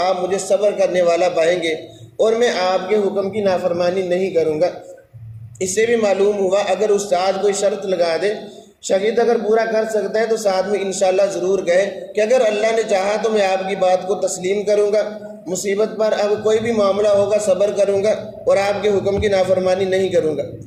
آپ مجھے صبر کرنے والا پائیں گے اور میں آپ کے حکم کی نافرمانی نہیں کروں گا۔ اس سے بھی معلوم ہوا اگر استاد کوئی شرط لگا دے، شاگرد اگر پورا کر سکتا ہے تو ساتھ میں انشاءاللہ ضرور کہے کہ اگر اللہ نے چاہا تو میں آپ کی بات کو تسلیم کروں گا، مصیبت پر اب کوئی بھی معاملہ ہوگا صبر کروں گا اور آپ کے حکم کی نافرمانی نہیں کروں گا۔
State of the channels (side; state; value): both; identical; correlation 1.00